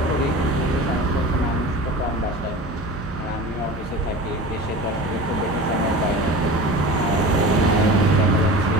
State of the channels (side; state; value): both; normal; correlation 0.34